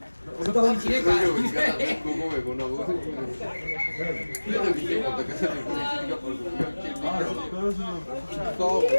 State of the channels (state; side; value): inverted; both; correlation -1.00